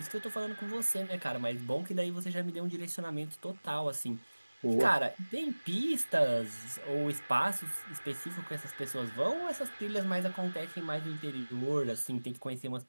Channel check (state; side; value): inverted; both; correlation -1.00